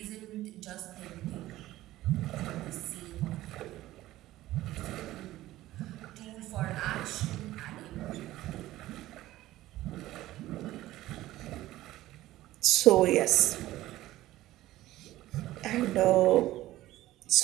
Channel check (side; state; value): left; quieter; 15.8 dB